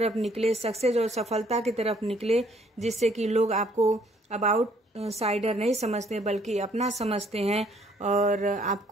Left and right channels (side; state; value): both; normal; correlation 0.64